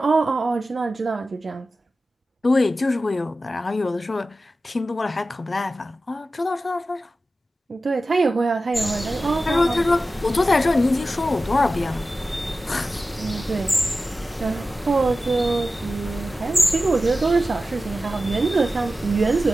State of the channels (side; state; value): both; normal; correlation 0.94